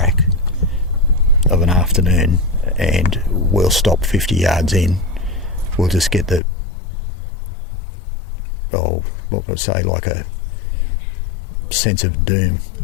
of an afternoon, and we'll stop 50 yards in. We'll just get the what would I say, like a sense of doom.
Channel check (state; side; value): drops out; right; at 6.4 s